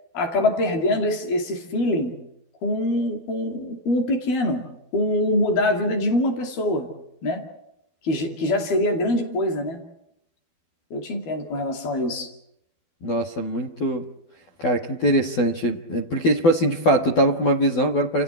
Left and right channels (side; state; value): right; late; 12 ms